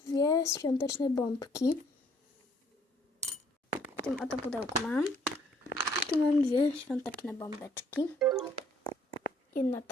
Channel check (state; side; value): normal; both; correlation 0.63